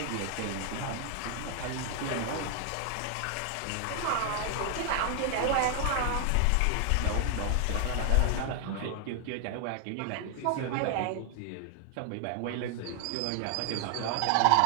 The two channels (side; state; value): both; different; correlation 0.00